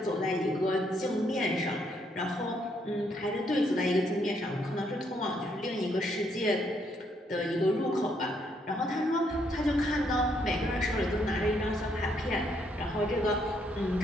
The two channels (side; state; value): both; normal; correlation 0.72